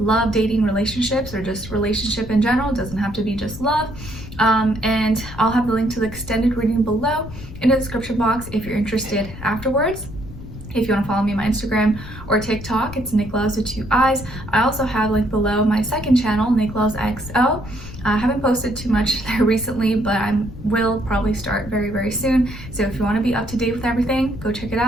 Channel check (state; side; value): noise; left; rumble, 13 dB below the sound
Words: dating, relationships, or just relationship in general. It doesn't have to be just love. And I'll have the link to the extended reading below in the description box if you're interested afterwards. If you want to follow me on my Instagram or TikTok, it's Nicloves with 2 eyes. I also have linked below my second channel, Nicloves XO. I haven't posted too much there recently, but I will probably start very, very soon. So if you want to be up to date with everything, go check it